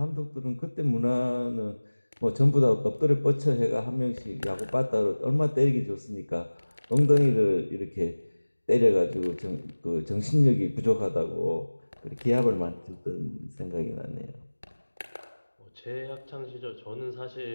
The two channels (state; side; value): inverted; both; correlation -1.00